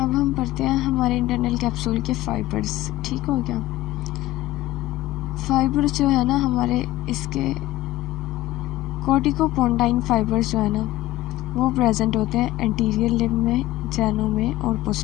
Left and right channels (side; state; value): right; quieter; 16.1 dB